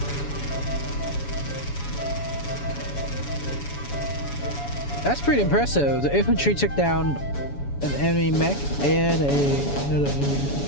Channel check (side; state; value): right; late; 7.1 ms